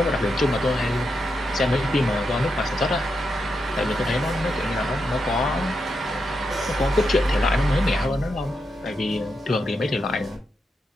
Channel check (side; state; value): both; normal; correlation 0.85